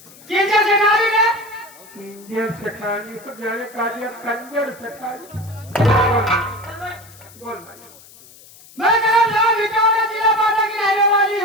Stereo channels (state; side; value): noise; left; hiss, 22 dB below the sound